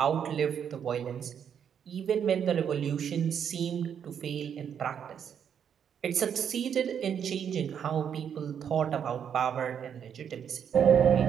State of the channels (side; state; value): left; quieter; 8.2 dB